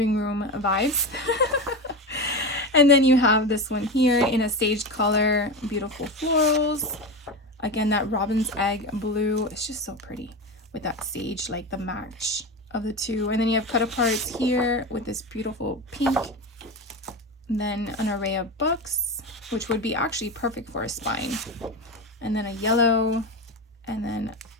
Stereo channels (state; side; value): normal; both; correlation 0.21